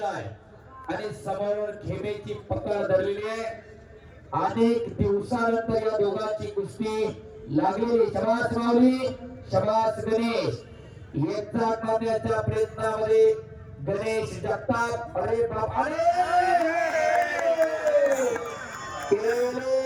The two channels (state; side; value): identical; both; correlation 1.00